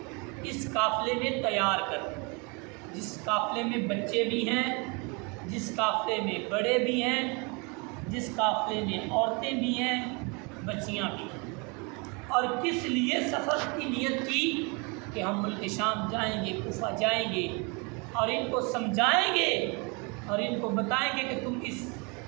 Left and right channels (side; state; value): left; quieter; 31.0 dB